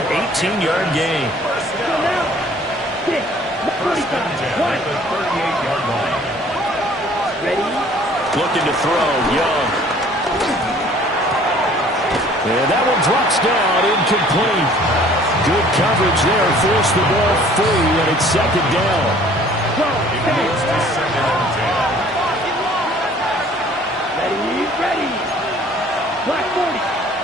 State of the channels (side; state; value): both; normal; correlation 0.54